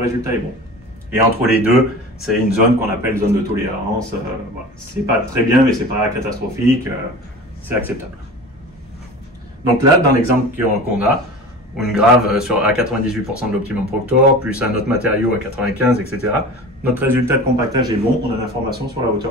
est bon. Et entre les deux, c'est une zone qu'on appelle zone de tolérance. Voilà. C'est pas très bien, mais c'est pas catastrophique. C'est acceptable. Donc là, dans l'exemple qu'on a, une grave à 98% de l'optimum Proctor, plus un autre matériau à 95, etc. Notre résultat de compactage est bon, on a l'information sur la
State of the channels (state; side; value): normal; both; correlation 0.36